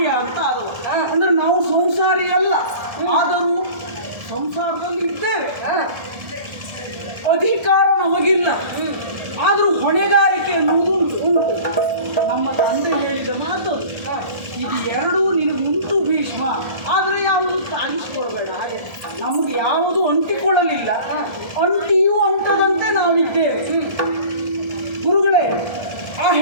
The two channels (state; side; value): late; left; 1.3 ms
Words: ಅಂತ ಆದವ. ಅಂದ್ರೆ ನಾವು ಸಂಸಾರಿ ಅಲ್ಲ, ಆದರೂ ಸಂಸಾರದಲ್ಲಿ ಇದ್ದೇವೆ. ಅಧಿಕಾರ ನಮಗಿಲ್ಲ, ಆದರೂ ಹೊಣೆಗಾರಿಕೆ ಅನ್ನುವುದು ಉಂಟು. ನಮ್ಮ ತಂದೆ ಹೇಳಿದ ಮಾತು ಇದು ಎರಡೂ ನಿನಗುಂಟು ಭೀಷ್ಮ, ಆದರೆ ಯಾವುದು ತಾಗಿಸಿಕೊಳ್ಬೇಡ. ಹಾಗೆ ನಮಗೆ ಯಾವುದು ಅಂಟಿಕೊಳ್ಳಲಿಲ್ಲ, ಅಂಟಿಯೂ ಅಂಟದಂತೆ ನಾವಿದ್ದೇವೆ. ಗುರುಗಳೇ, ಆ